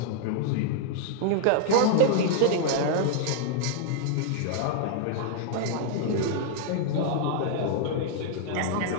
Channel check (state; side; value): different; both; correlation 0.00